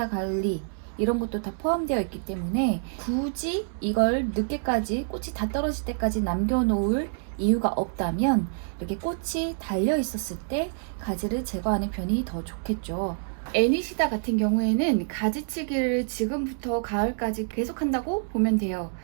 관리 이런 것도 다 포함되어 있기 때문에 굳이 이걸 늦게까지 꽃이 다 떨어질 때까지 남겨놓을 이유가 없다면 이렇게 꽃이 달려 있었을 때 가지를 제거하는 편이 더 좋겠죠. 애니시다 같은 경우에는 가지치기를 지금부터 가을까지 계속 한다고 보면 돼요.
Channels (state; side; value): silent; left; 60 dB below the other